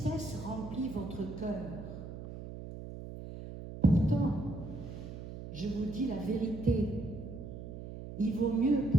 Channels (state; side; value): noise; right; hum, 10 dB below the sound